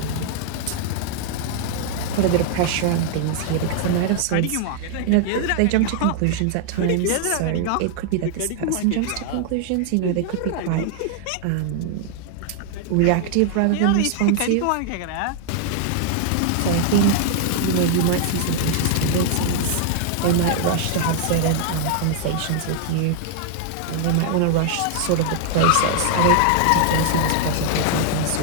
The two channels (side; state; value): both; different; correlation 0.00